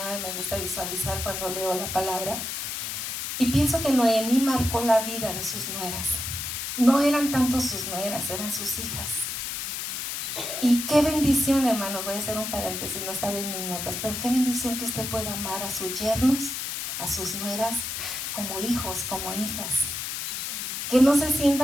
me gusta visualizar cuando leo la palabra. Y pienso que Noemí marcó la vida de sus nueras. No eran tanto sus nueras, eran sus hijas. Y qué bendición, hermanos, voy a hacer un paréntesis, no estaba en mis notas, pero qué bendición que usted pueda amar a sus yernos, a sus nueras, como hijos, como hijas. Que no se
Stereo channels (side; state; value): left; noise; hiss, 4 dB below the sound